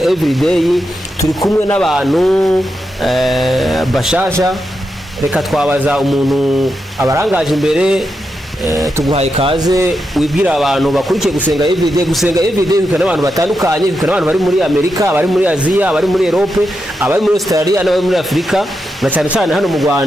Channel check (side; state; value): both; normal; correlation 0.86